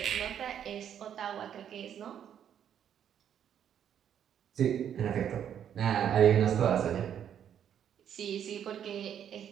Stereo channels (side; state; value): left; quieter; 9.3 dB